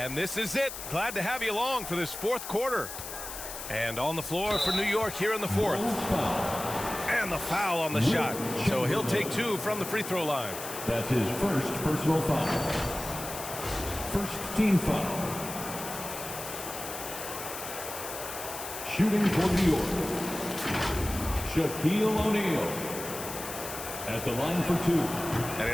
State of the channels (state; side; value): noise; left; hiss, 9 dB below the sound